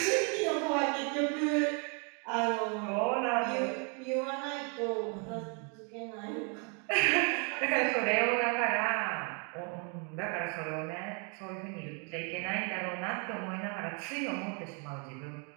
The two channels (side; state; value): left; quieter; 37.0 dB